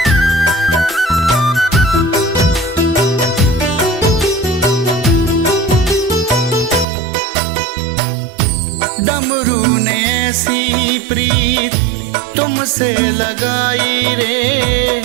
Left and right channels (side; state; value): left; drops out; at 6.9 s